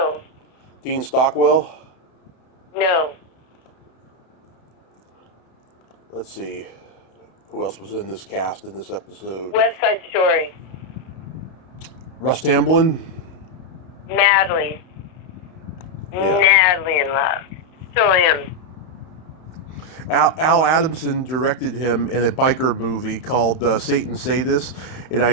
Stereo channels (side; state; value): right; late; 31 ms